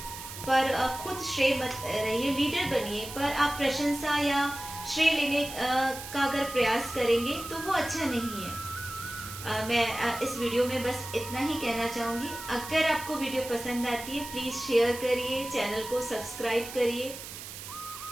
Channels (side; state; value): right; noise; hiss, 11 dB below the sound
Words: पर खुद श्रेय मत रहिए, लीडर बनिए, पर आप प्रशंसा या श्रेय लेने का अगर प्रयास करेंगे तो वो अच्छा नहीं है। मैं इस वीडियो में बस इतना ही कहना चाहूंगी। अगर आपको वीडियो पसंद आती है प्लीज शेयर करिए, चैनल को सब्सक्राइब करिए।